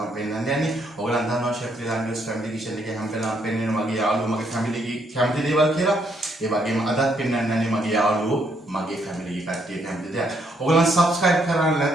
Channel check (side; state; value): both; normal; correlation 0.73